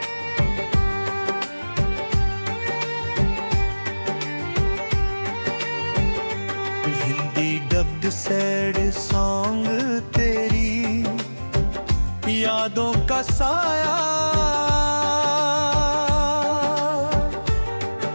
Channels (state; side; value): inverted; both; correlation -1.00